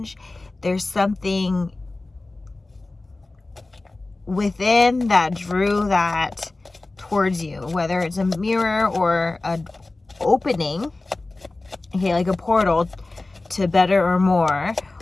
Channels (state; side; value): quieter; right; 3.1 dB